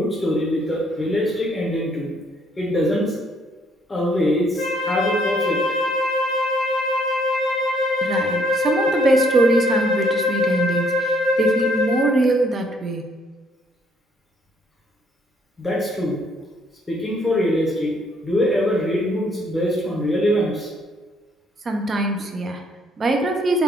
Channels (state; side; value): normal; both; correlation 0.67